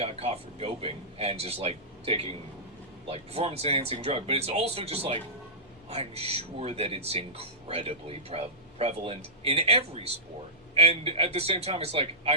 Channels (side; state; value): both; normal; correlation -0.17